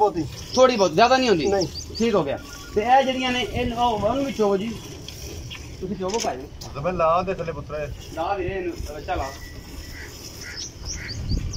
ज्यादा नहीं होती। नहीं ठीक हो गया। ते ए जड़ियां ने इन ओन भी चोवो जी, तुसी चोवो भाई तो मैं ला दे थले पुत्रा ला वीरे बच्चा ला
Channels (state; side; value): identical; both; correlation 1.00